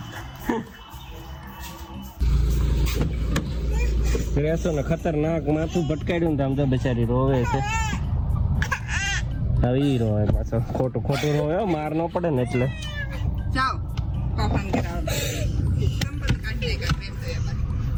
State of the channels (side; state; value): both; identical; correlation 1.00